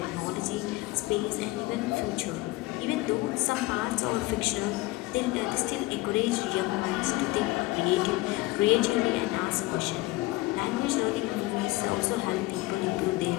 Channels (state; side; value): quieter; right; 19.9 dB